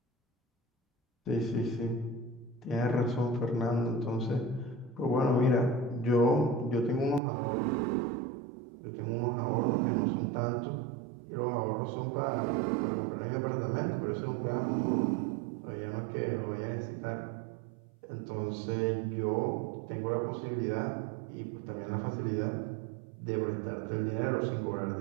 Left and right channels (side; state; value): left; drops out; at 7.2 s